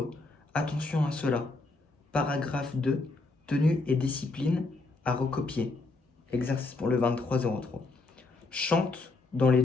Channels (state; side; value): quieter; right; 3.4 dB